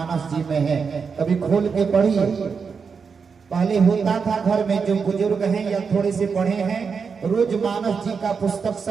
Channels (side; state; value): left; quieter; 5.7 dB